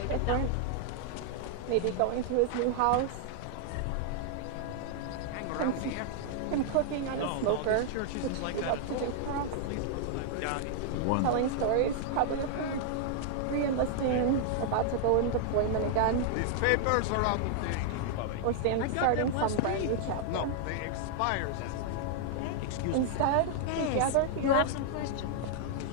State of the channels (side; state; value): both; different; correlation 0.00